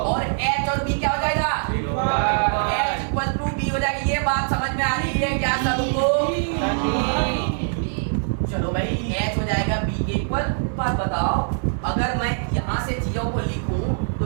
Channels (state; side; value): silent; left; digital silence